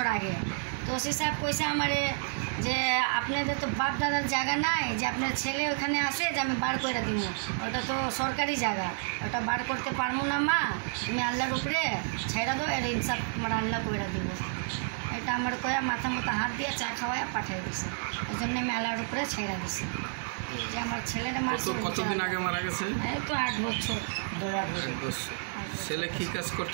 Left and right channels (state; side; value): silent; left; 58 dB below the other